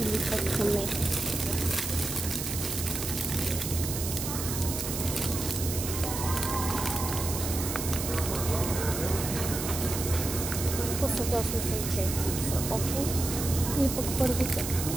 как не. По-съгласно съм, че са окей. Или пък първите.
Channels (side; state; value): right; noise; hiss, 5 dB below the sound